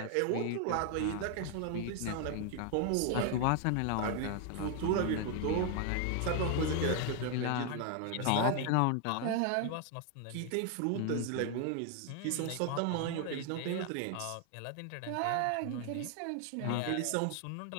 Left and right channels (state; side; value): different; both; correlation 0.00